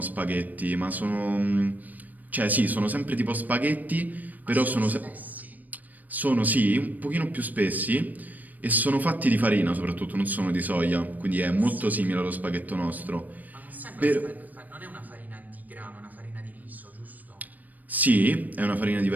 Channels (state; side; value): late; left; 0.082 ms